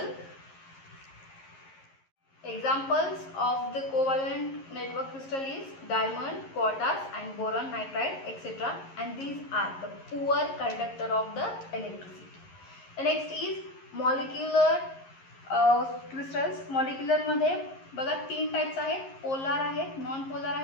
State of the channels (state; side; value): late; right; 11 ms